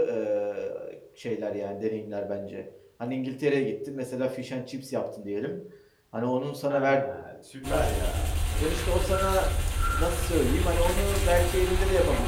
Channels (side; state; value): both; identical; correlation 1.00